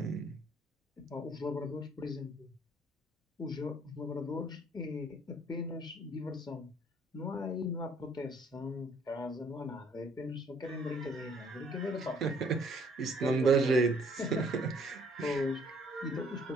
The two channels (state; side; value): normal; both; correlation 0.61